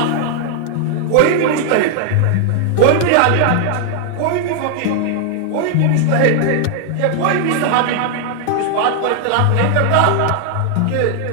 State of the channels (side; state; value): both; different; correlation 0.00